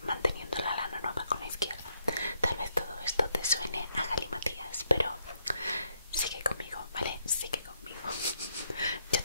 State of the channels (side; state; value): both; inverted; correlation -0.76